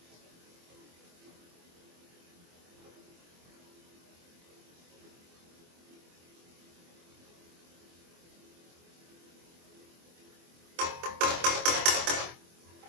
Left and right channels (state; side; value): late; left; 24 ms